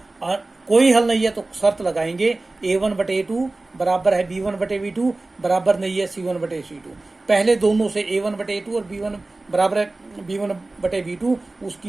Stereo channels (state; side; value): quieter; left; 3.1 dB